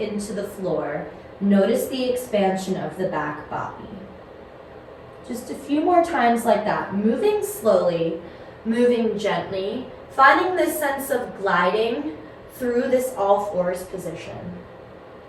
the floor. Notice the expansion of the back body. Just a few more times like that, moving slowly, moving gently, finding this sense of gliding through this all fours position.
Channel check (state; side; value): identical; both; correlation 1.00